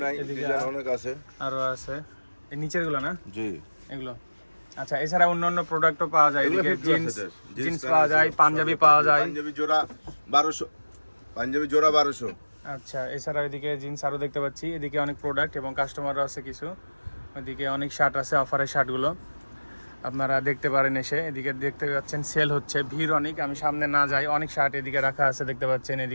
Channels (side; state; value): both; inverted; correlation -1.00